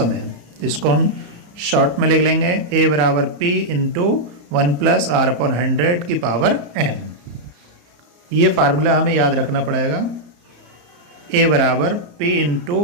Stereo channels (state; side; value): late; left; 34 ms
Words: इसको हम शॉर्ट में लिख लेंगे A बराबर P into 1 plus R upon 100 की पावर N। ये फार्मूला हमें याद रखना पड़ेगा। A बराबर P